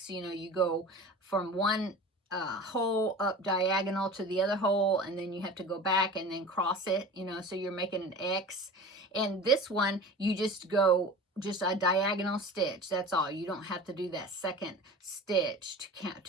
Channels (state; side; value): normal; both; correlation 0.37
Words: You know, you go from one hole up diagonal to the other hole, and then you have to go back and then cross it, you know, so you're making an X. And this one, you just go just a diagonal stitch, that's all. You don't have to do that second stitch